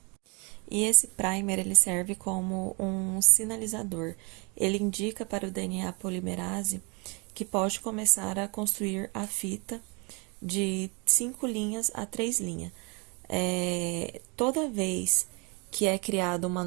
E esse primer ele serve como um sinalizador. Ele indica para o DNA polimerase que pode começar a construir a fita de 5 linhas a 3 linhas. Toda vez que é criada uma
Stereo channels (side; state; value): left; quieter; 31.0 dB